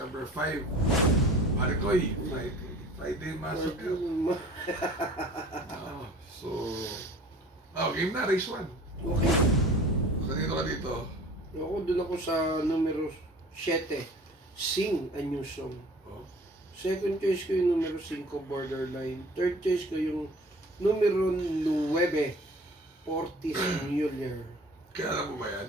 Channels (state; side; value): normal; both; correlation 0.46